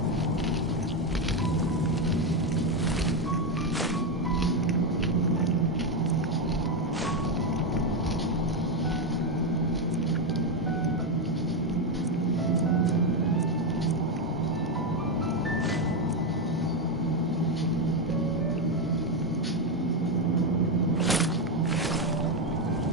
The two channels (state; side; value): normal; both; correlation 0.07